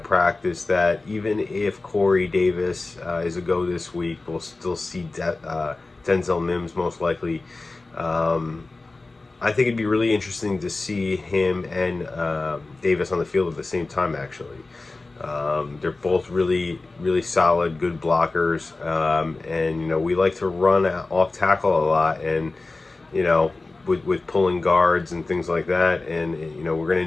practice that even if Corey Davis is a go this week, we'll still see Denzel Mims most likely. Um, I think it'd be really interesting to see him and Davis on the field at the same time. Actually, they're both really solid, good blockers, and we like to run off tackle a lot, and you know with pulling guards and things like that, and we're going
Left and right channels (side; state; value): right; quieter; 3.4 dB